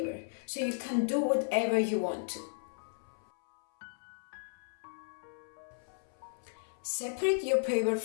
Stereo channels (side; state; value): right; silent; 55 dB below the other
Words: so you can do whatever you want to. Separate your paper